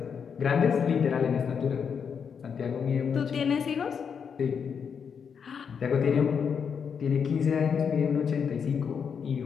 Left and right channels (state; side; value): quieter; right; 6.8 dB